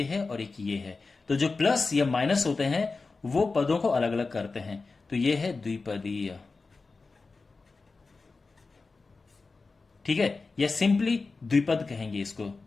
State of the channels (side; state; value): right; quieter; 4.0 dB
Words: है और एक ये है। तो जो प्लस या माइनस होते हैं वो पदों को अलग अलग करते हैं, तो ये है द्विपदीय। ठीक है, या सिंपली द्विपद कहेंगे इसको,